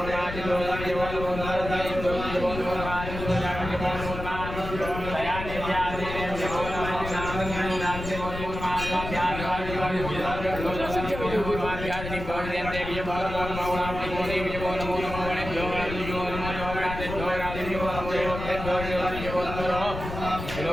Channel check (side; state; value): left; noise; rumble, 7 dB below the sound